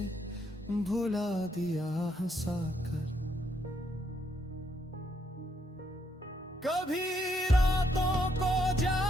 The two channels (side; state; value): both; normal; correlation 0.75